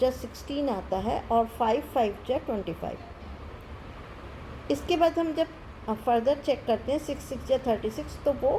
16 आता है और 5 5 जा 25। इसके बाद हम जब फर्दर चेक करते हैं 6 6 जा 36, तो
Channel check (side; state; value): both; identical; correlation 1.00